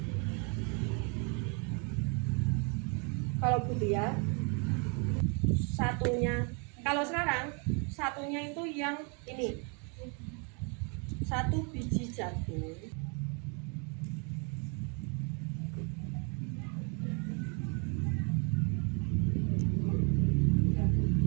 Kalau Butia satunya, kalau sekarang satunya itu yang ini, 1 biji jagung,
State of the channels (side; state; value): left; quieter; 35.4 dB